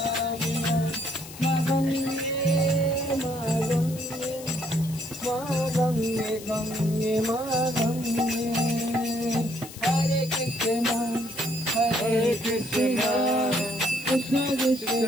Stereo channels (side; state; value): left; noise; hiss, 15 dB below the sound